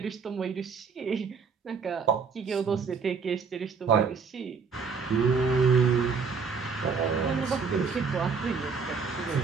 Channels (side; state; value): left; quieter; 5.4 dB